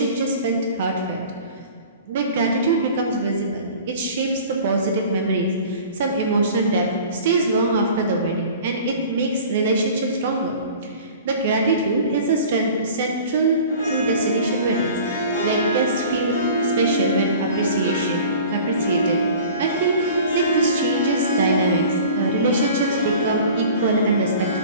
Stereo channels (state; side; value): inverted; both; correlation -0.44